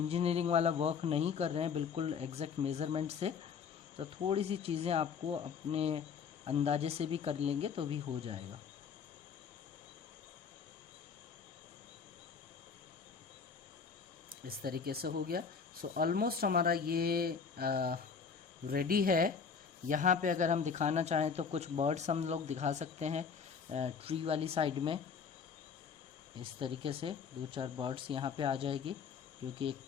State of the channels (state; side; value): quieter; right; 6.1 dB